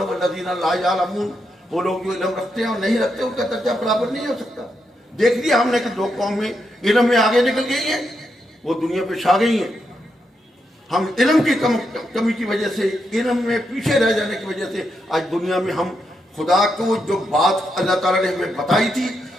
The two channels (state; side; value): normal; both; correlation 0.82